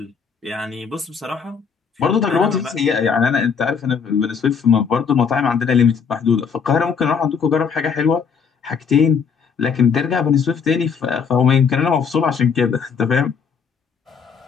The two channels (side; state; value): right; quieter; 6.2 dB